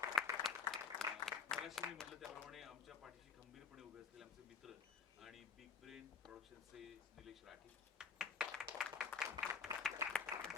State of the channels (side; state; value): right; quieter; 6.2 dB